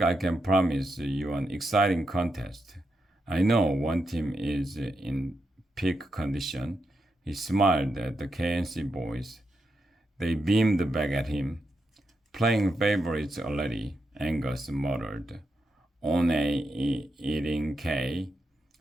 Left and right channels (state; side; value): normal; both; correlation 0.85